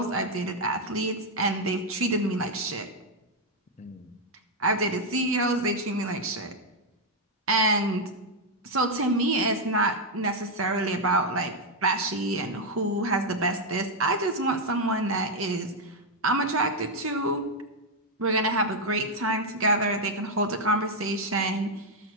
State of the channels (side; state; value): both; normal; correlation 0.01